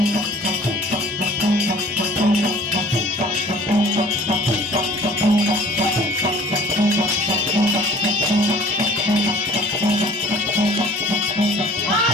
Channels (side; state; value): both; normal; correlation 0.50